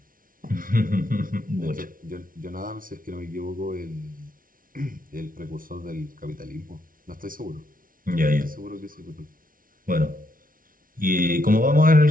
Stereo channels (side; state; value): left; late; 0.40 ms